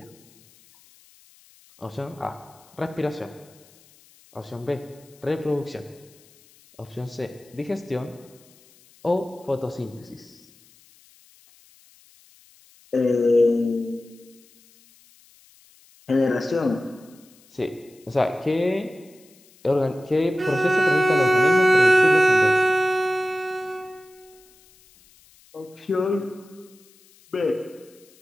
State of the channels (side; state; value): left; noise; hiss, 28 dB below the sound